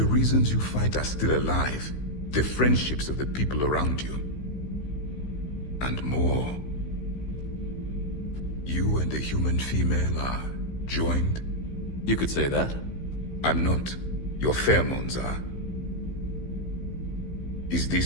reasons you fight are still alive. The friendships of the people around you. And more. You and the human female are joined? You could say that. I'm not. Your pheromones are. Is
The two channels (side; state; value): right; late; 15 ms